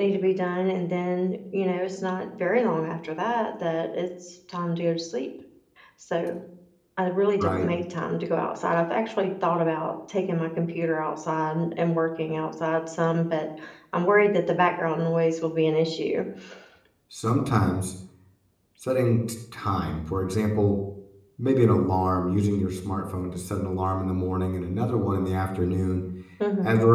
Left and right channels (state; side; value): identical; both; correlation 1.00